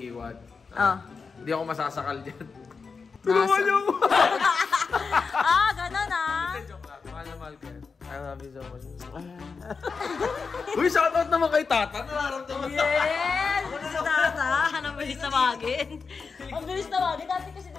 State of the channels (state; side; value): quieter; right; 5.0 dB